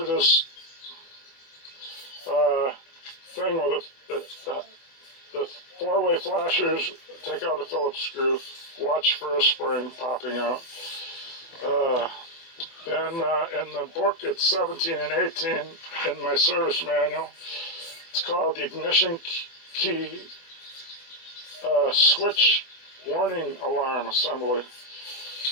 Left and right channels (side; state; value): right; late; 24 ms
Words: thing with the 4-way flashers. Take out the Phillips screw. Watch for a spring popping out. Then in the book, it's 17 and 18 in my service manual. It's called the ignition key switch warning alarm assembly.